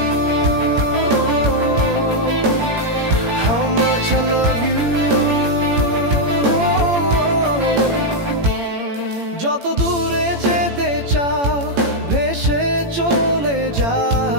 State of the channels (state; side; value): late; left; 18 ms